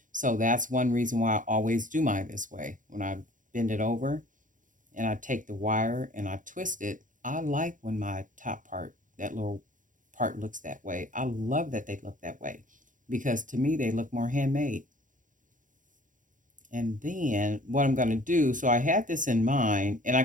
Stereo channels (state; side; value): late; left; 0.38 ms